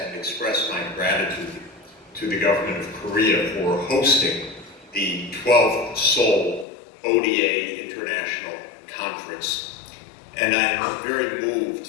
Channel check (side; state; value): right; drops out; at 6.7 s